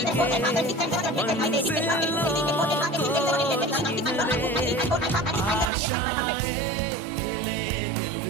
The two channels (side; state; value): left; drops out; at 5.7 s